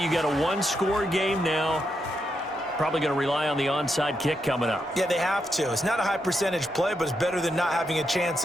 You got a 1-score game now. Probably going to rely on the onside kick coming up. Yeah, they have to. It's not a high percentage play, but it's better than not having a chance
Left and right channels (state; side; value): normal; both; correlation 0.83